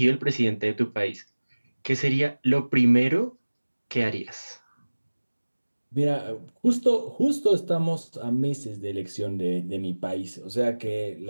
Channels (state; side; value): inverted; both; correlation -1.00